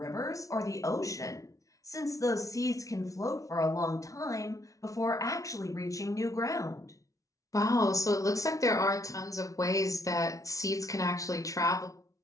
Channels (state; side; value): late; right; 0.17 ms